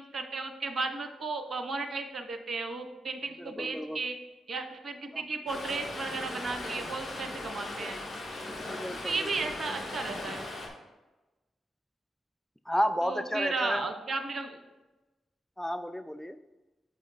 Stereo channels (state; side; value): normal; both; correlation 0.86